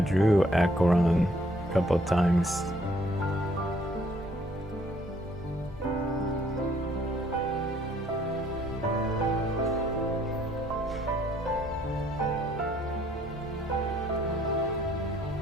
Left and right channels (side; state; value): both; normal; correlation 0.64